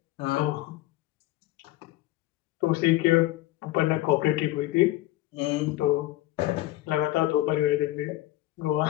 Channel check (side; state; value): right; quieter; 16.3 dB